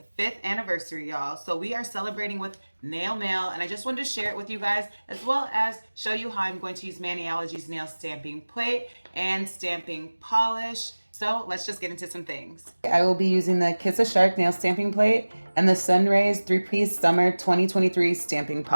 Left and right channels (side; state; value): both; inverted; correlation -1.00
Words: 5th anniversary, y'all. So we are celebrating with nail mail, and I just wanted to share it with you guys, as well as show you how I'm going to use Maniology's nail stamping plate and stamping polish. So let's just get into some things. I will be using the Kiss a Shark nail stamping plate and the Sunrays 3-piece summer 2023 stamping